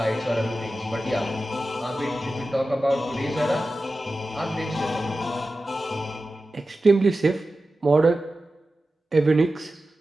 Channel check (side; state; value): both; normal; correlation 0.94